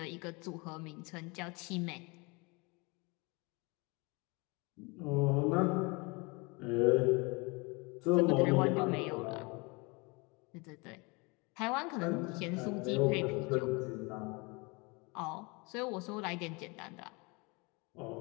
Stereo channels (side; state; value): right; quieter; 28.1 dB